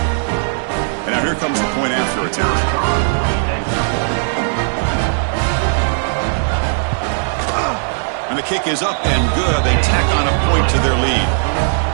And now here comes the point after attempt. And the kick is up and good. They tack on a point to their lead.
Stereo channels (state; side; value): silent; left; digital silence